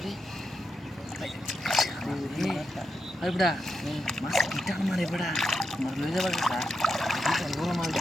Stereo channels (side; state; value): both; normal; correlation 0.85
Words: আরে বড়া মাছ কিটা মারে বড়া মার লয়ে যাবার কথা বিশাল বড় মাছ